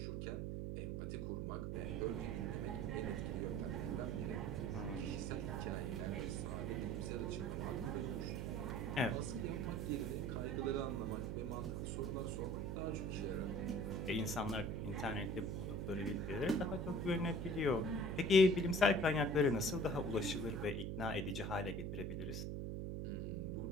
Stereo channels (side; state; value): right; noise; hum, 2 dB below the sound